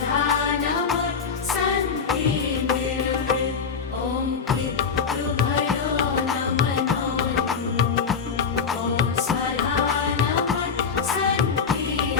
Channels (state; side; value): quieter; right; 5.9 dB